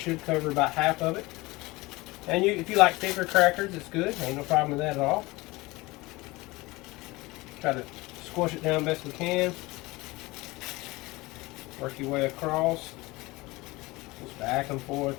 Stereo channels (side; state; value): right; quieter; 21.8 dB